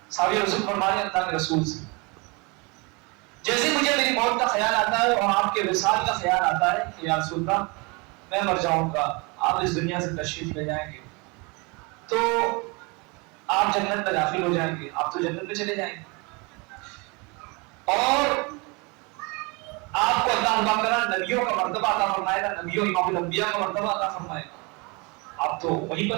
صحابی رسول فرمانے اللہ کے رسول سے جیسے مجھے میری موت کا خیال آتا ہے اور آپ کے وصال کا خیال آتا ہے کہ یا رسول اللہ میں مر جاؤں گا، آپ اس دنیا سے تشریف لے جائیں گے، تو آپ جنت میں داخل ہو جائیں گے، آپ تو جنت میں چلے جائیں گے، اور آپ کو اللہ تعالیٰ نبیوں کا مرتبہ عطا فرمائے گا، نبیوں امام الانبیاء کا مرتبہ عطا فرمائے گا، آپ تو وہیں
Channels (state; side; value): quieter; left; 28.9 dB